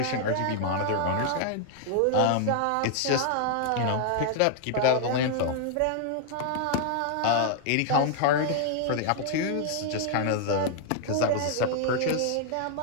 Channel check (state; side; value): different; both; correlation 0.00